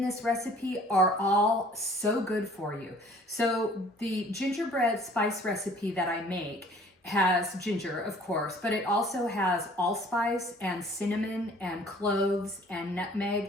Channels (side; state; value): both; normal; correlation 0.53